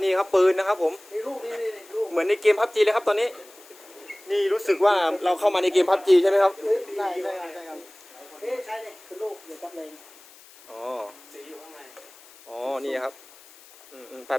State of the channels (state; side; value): noise; left; hiss, 23 dB below the sound